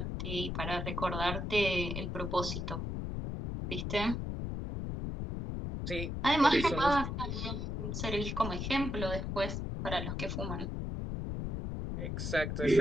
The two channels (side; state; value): left; noise; rumble, 3 dB below the sound